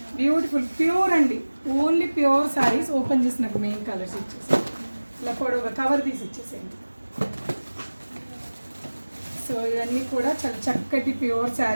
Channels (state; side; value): inverted; both; correlation -1.00